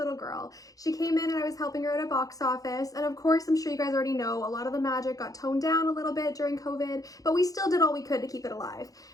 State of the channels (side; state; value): right; late; 0.17 ms